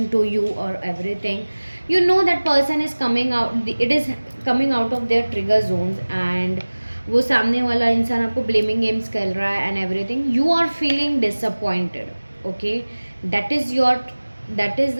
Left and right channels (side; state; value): both; inverted; correlation -1.00